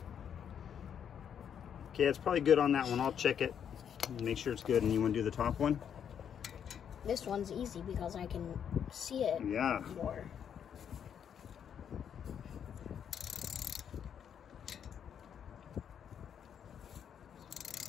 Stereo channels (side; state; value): right; quieter; 8.4 dB